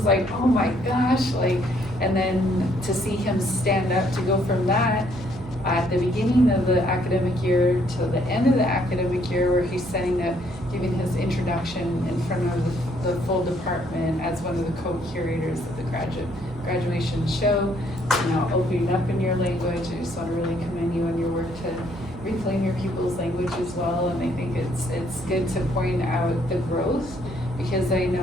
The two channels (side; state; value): right; noise; hum, 17 dB below the sound